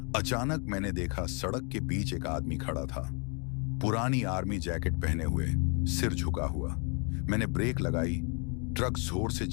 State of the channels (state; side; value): quieter; right; 35.5 dB